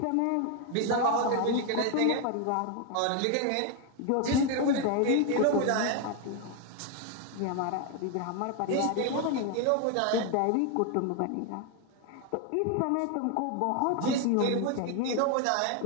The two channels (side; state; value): both; different; correlation 0.01